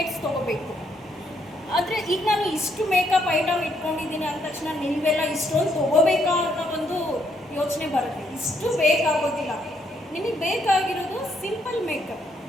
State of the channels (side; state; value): both; normal; correlation 0.73